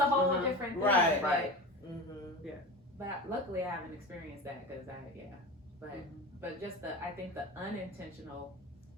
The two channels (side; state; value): both; normal; correlation 0.30